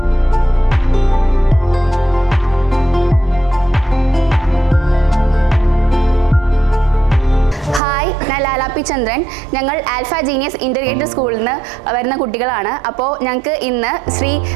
ഞാൻ Ramachandran. ഞങ്ങൾ ആൽഫ ജീനിയസ് ഇൻ്റഗ്രേറ്റഡ് സ്കൂളിൽ നിന്ന് വരുന്ന കുട്ടികളാണ്. അപ്പോൾ ഞങ്ങൾക്ക് ഇന്ന് ശ്രീ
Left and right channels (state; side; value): drops out; left; at 7.8 s